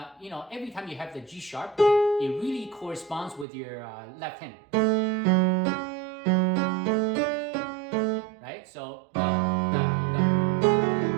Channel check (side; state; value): left; drops out; at 3.5 s